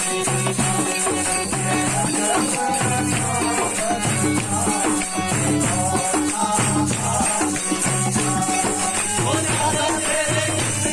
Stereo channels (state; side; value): identical; both; correlation 1.00